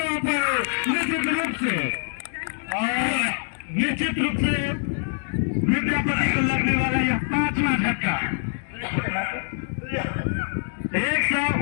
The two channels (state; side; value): silent; right; digital silence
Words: निश्चित रूप से विद्यापति को लगने वाला यह 5वां झटका